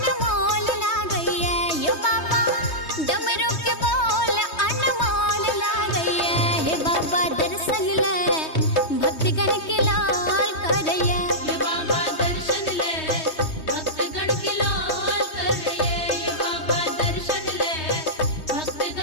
लागैया। यो बाबा डमरू के बोल अनमोल लागैया। हे बाबा दर्शन ले भक्तगण की लाल करैया। ये बाबा दर्शन ले भक्तगण की लाल करिए। ये बाबा दर्शन ले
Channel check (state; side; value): late; right; 3.2 ms